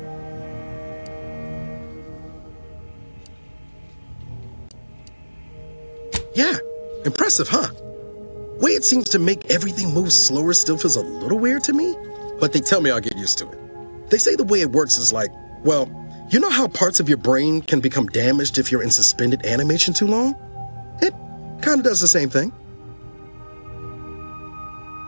Yeah, impressive, huh? Way it seems to make everything move slower still feels a little weird to me, but they tell me I'll get used to it. They say the way it works is like, well, you know how parts of your brain can become damaged if you're in suspended animation too long? It kind of does the same thing.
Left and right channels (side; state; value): both; inverted; correlation -1.00